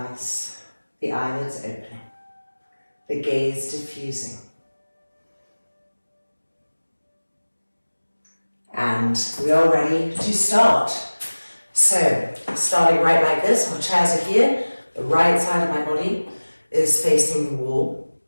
the eyelids opening, the gaze diffusing. And we are ready to start. So, starting right like this, our chairs are here, the right side of my body is facing the wall.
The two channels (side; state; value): both; inverted; correlation -1.00